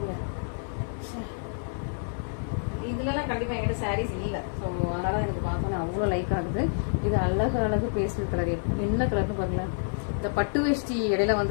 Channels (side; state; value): right; silent; 59 dB below the other